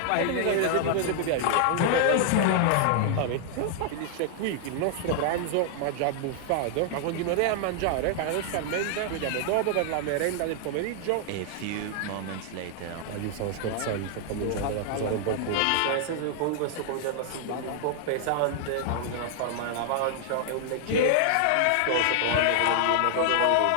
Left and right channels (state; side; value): different; both; correlation -0.01